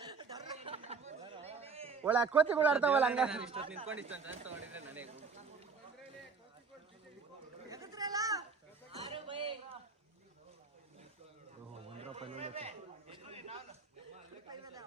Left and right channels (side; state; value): left; quieter; 5.1 dB